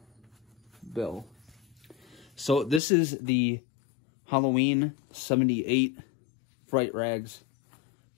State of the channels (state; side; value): drops out; right; at 2.8 s